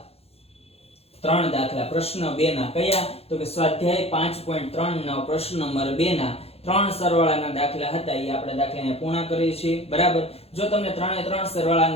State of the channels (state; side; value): late; right; 0.29 ms